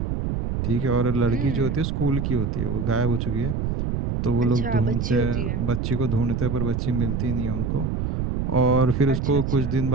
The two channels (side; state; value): right; noise; rumble, 1 dB below the sound